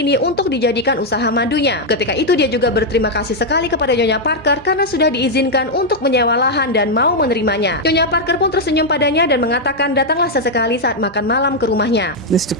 untuk dijadikan usaha madunya. Ketika itu dia juga berterima kasih sekali kepada Nyonya Parker karena sudah diizinkan untuk menyewa lahan dan mau menerimanya. Nyonya Parker pun tersenyum padanya dan mengatakan datanglah sesekali saat makan malam ke rumahnya. Mr.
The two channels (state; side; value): normal; both; correlation -0.01